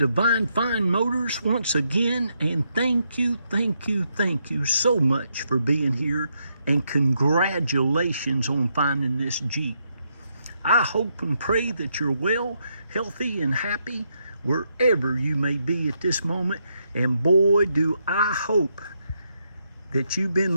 Fine Motors once again, and thank you so much for being here, and congratulations on finding this Jeep. I hope and pray that you're well, healthy, and happy wherever you may be at this moment, and boy do I hope that you've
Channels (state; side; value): inverted; both; correlation -0.79